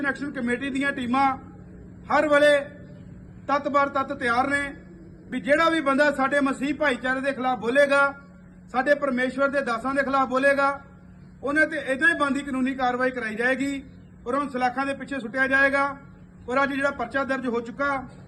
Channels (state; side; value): identical; both; correlation 1.00